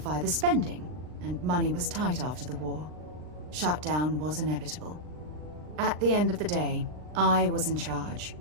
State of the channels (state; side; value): late; left; 39 ms